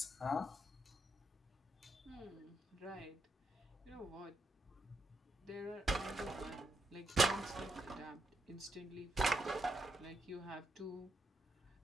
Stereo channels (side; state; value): both; normal; correlation 0.80